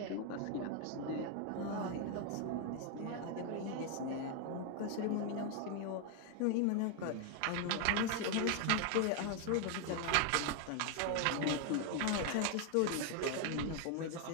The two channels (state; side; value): different; both; correlation 0.01